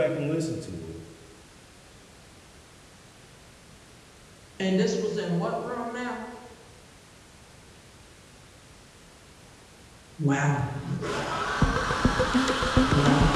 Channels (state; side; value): identical; both; correlation 1.00